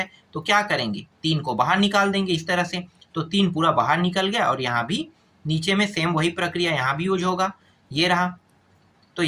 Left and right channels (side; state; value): both; identical; correlation 1.00